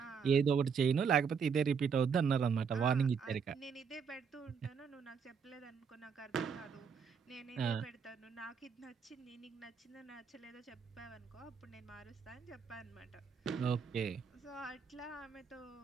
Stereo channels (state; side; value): quieter; left; 6.3 dB